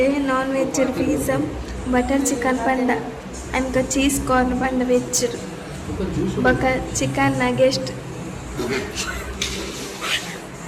non veg pizza butter chicken ಪಂಡ ಅಂಕ ಚೀಸ್ ಕಾರ್ನ್ ಪಂಡ ವೆಜ್ ಬೊಕ್ಕ ಚಿಕನ್ ನಗೆಸ್ಟ್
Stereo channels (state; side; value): identical; both; correlation 1.00